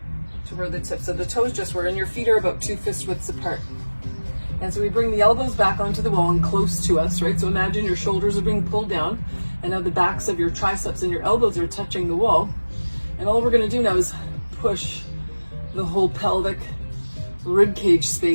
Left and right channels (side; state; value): both; inverted; correlation -1.00